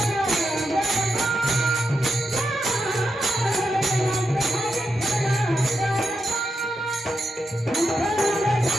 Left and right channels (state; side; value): normal; both; correlation 0.86